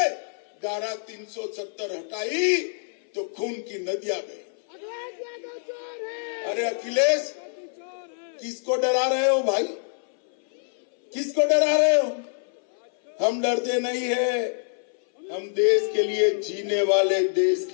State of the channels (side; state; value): right; silent; 61 dB below the other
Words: धारा 370 हटाई तो खून की नदियां बही। अरे अखिलेश, किसको डरा रहे हो भाई? किसको डरा रहे हो? हम डरते नहीं है, हम देश के लिए जीने वाले, देश